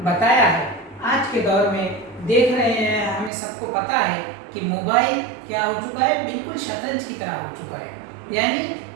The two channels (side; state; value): left; drops out; at 3.3 s